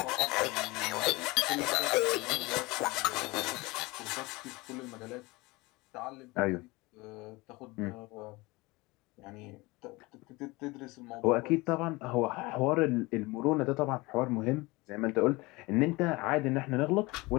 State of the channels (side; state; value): right; quieter; 23.0 dB